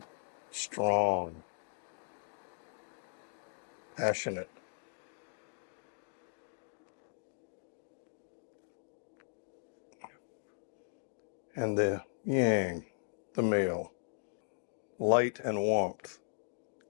strong, passionate. And the yang, the male, light and warmth.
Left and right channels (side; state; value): right; silent; digital silence